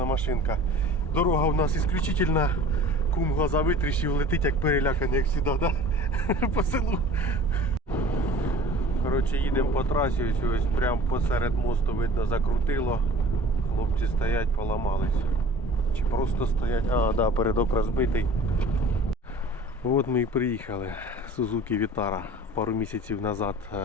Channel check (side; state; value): both; normal; correlation 0.44